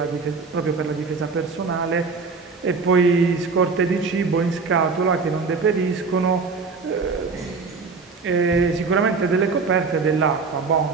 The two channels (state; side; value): quieter; left; 4.6 dB